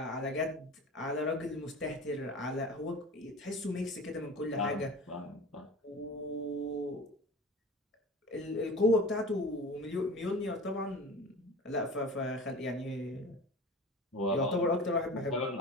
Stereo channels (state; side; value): normal; both; correlation 0.36